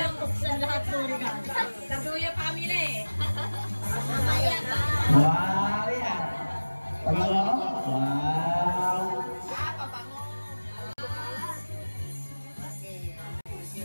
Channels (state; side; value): inverted; both; correlation -1.00